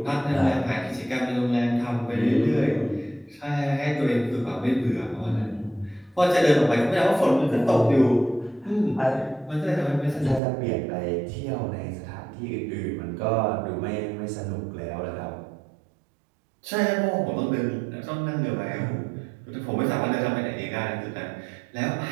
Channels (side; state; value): left; drops out; at 10.4 s